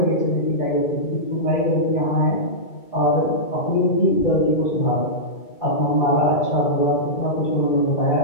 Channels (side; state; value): right; late; 2.2 ms